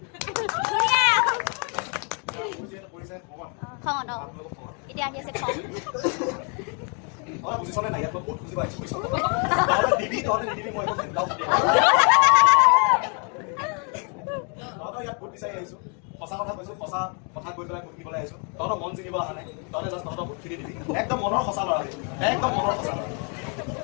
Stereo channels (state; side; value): quieter; right; 38.0 dB